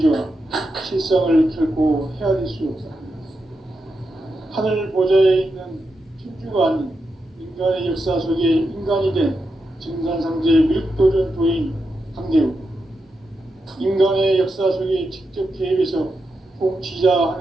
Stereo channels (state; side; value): normal; both; correlation 0.87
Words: 실상을 결코 헤아릴 수 없다. 하늘 보좌에 있는 천주가 아닌 인간의 역사 속에 인간이 된 증산상제 미륵도전 도인 강대우. 인간의 역사 속에 직접 개입해서 통치자